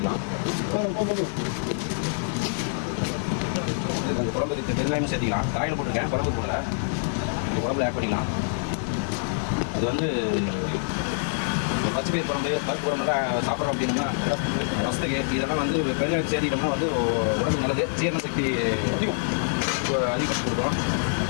அந்த குழம்புக்கு பெருங்காயமும் சேர்த்திக்கலாம். காயில் போட்டிருக்கேன், குழம்பு போடல. இந்த குழம்புல ஆட் பண்ணிக்கலாம். அது வந்து பச்சை பயிர் குழம்பு, பருப்பு குழம்புலாம் சாப்பிட்றோம் அப்படின்னா ரசத்துக்கு இதெல்லாம் வந்து பெருங்காயம் சேர்த்திட்டோம்னா வந்து உடம்பு நல்லது, ஜீரண சக்தி அதிகப்படுத்தி கொடுக்கும்.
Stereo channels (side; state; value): right; silent; digital silence